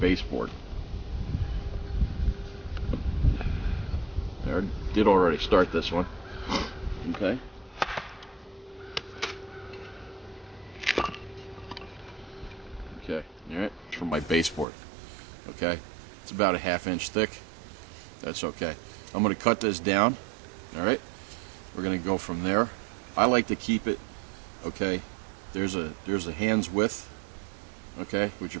I did already start this one, okay? Okay, alright, for my baseboard, okay? It's about a 1/2 inch thick. That's okay. I'm going to cut this down, alright? We're going to go from there. I like to keep it, okay, there's a hand's width, okay, with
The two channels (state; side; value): drops out; left; at 14.7 s